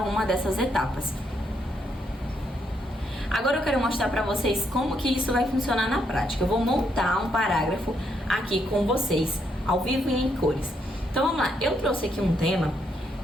uma dessas etapas. Agora eu quero mostrar para vocês como que isso vai funcionar na prática. Eu vou montar um parágrafo aqui com vocês, ao vivo e em cores. Então vamos lá, eu trouxe aqui um tema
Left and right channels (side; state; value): both; normal; correlation 0.76